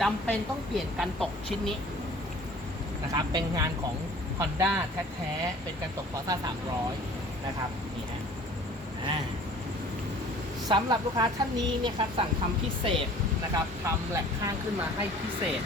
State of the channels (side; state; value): both; normal; correlation 0.49